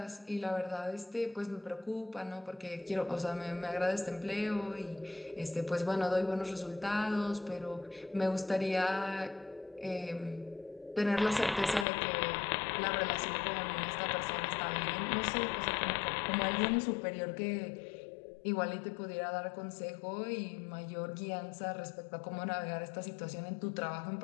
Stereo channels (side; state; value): right; drops out; at 11.9 s